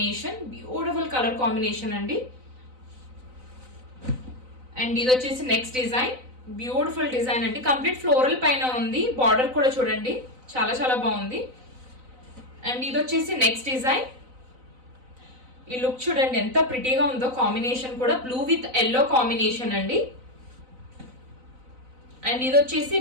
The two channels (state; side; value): late; left; 4.0 ms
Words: Beautiful colour combination అండి. అండ్ ఇది వచ్చేసి నెక్స్ట్ డిజైన్. బ్యూటిఫుల్ డిజైన్ అండి. కంప్లీట్ ఫ్లోరల్ పైన ఉంది. బార్డర్ కూడా చూడండి చాలా చాలా బాగుంది. అండ్ ఇది వచ్చేసి నెక్స్ట్ డిజైన్. ఈ లుక్ చూడండి ఎంత ప్రిటీగా ఉందో. కాంబినేషన్ కూడా బ్లూ విత్ ఎల్లో కాంబినేషన్ అండి. అండ్ ఇది వచ్చేసి